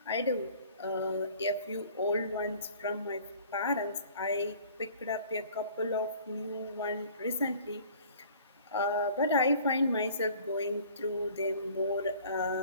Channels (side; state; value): both; inverted; correlation -0.50